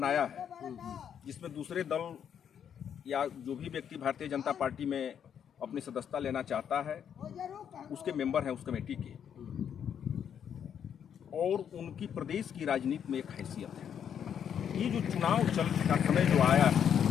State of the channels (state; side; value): quieter; right; 8.5 dB